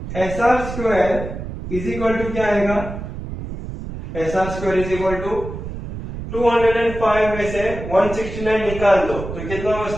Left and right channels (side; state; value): right; noise; rumble, 8 dB below the sound